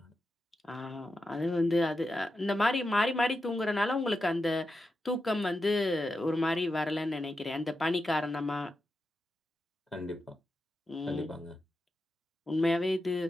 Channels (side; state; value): both; normal; correlation 0.89